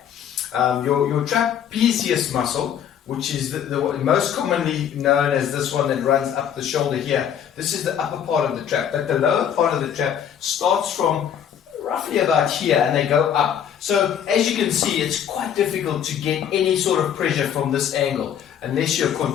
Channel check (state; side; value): quieter; right; 9.1 dB